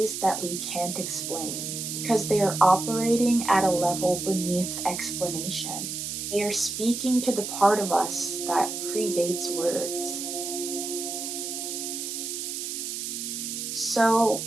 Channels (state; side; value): noise; right; hiss, 5 dB below the sound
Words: that we can't explain because they are operating at a level beneath explanation. They are speaking to the part of us that predates words. So,